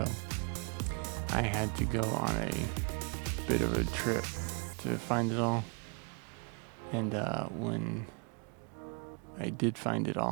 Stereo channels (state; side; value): quieter; left; 36.3 dB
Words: I had to go on a bit of a trip to find it all. And when I did find it